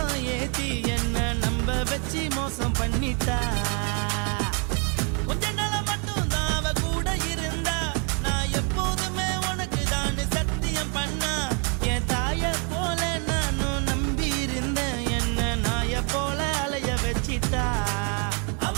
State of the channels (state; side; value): quieter; left; 37.4 dB